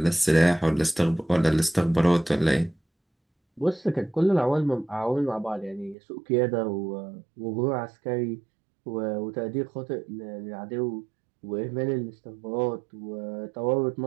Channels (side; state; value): left; drops out; at 6.0 s